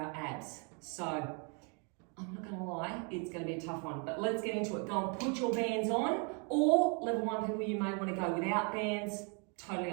abs. So I'm not going to lie, it's going to be a tough one, but let's get into it. Go and put your bands on, or level 1 people, you may want to go without bands, totally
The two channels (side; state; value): left; quieter; 36.2 dB